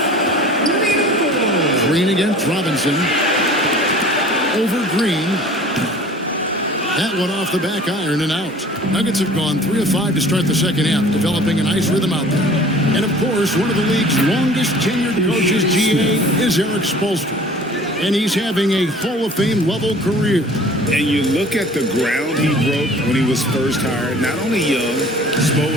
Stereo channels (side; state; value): both; normal; correlation 0.47